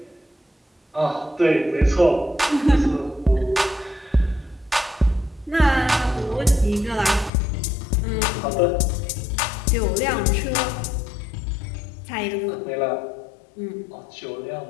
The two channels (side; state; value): right; drops out; at 7.3 s